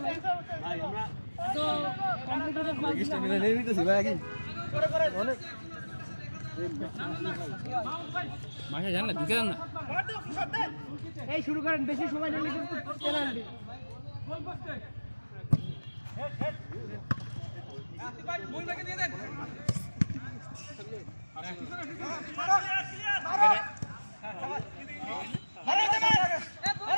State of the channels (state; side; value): inverted; both; correlation -1.00